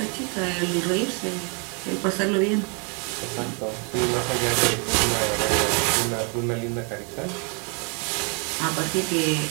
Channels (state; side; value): quieter; left; 36.5 dB